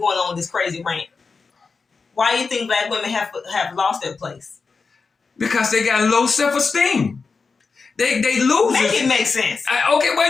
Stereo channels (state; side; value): quieter; right; 4.7 dB